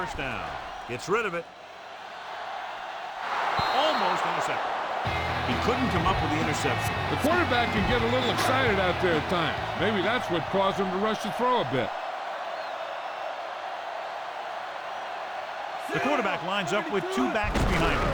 down. Gets rid of it. Almost intercepted. He couldn't come up with the interception. The quarterback can get a little excited out there at times. Maybe that's what caused him to rush the throw a bit. The quarterback lines up with 2 backs behind him.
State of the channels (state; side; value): identical; both; correlation 1.00